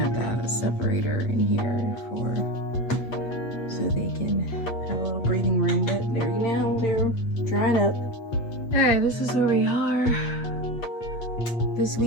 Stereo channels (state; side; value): late; right; 8.4 ms